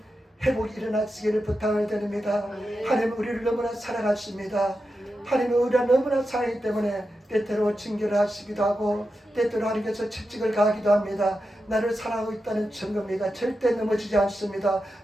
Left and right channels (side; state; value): both; normal; correlation 0.90